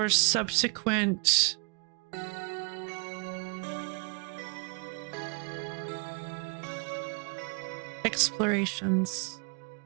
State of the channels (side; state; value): left; quieter; 36.3 dB